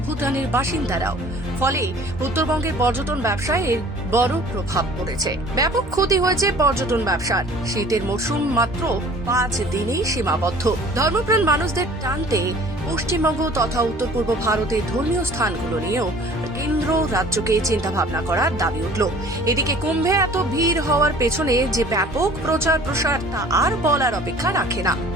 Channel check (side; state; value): both; normal; correlation 0.49